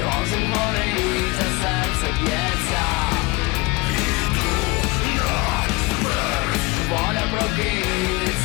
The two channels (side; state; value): right; quieter; 23.3 dB